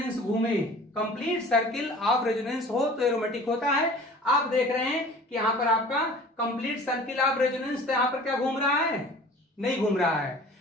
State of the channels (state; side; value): normal; both; correlation 0.45